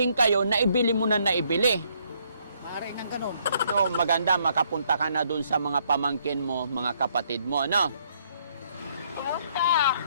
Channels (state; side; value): inverted; both; correlation -0.69